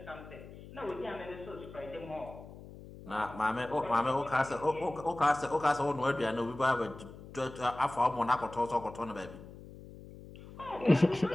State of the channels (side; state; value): left; noise; hum, 16 dB below the sound